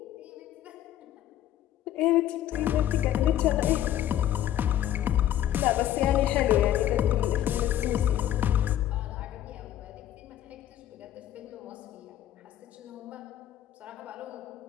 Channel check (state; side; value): quieter; right; 11.9 dB